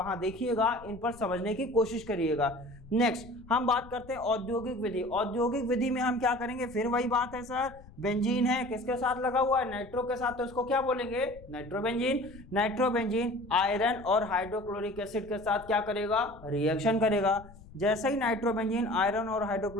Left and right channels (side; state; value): left; noise; rumble, 20 dB below the sound